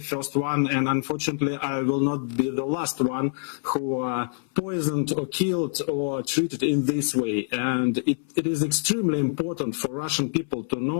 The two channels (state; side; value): silent; right; 58 dB below the other